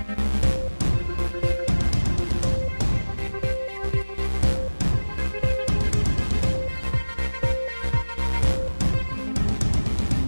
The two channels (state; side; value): inverted; both; correlation -1.00